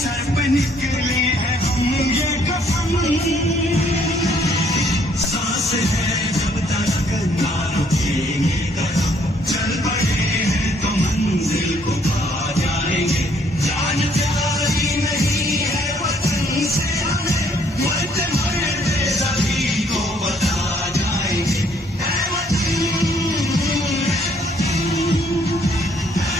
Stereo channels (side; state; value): both; normal; correlation 0.65